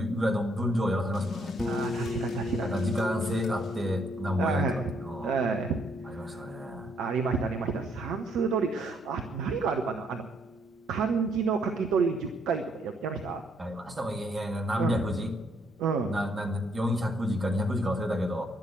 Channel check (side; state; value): both; normal; correlation 0.70